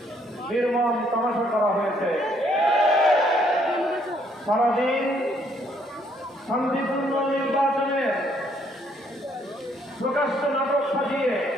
নির্মম তামাশা করা হয়েছে। সারাদিন শান্তিপূর্ণ নির্বাচনের প্রকাশ্য নাটক সাজিয়ে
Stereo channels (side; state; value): both; normal; correlation 0.68